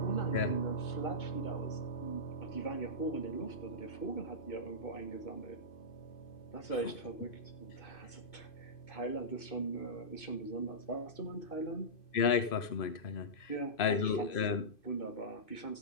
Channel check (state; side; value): late; right; 2.5 ms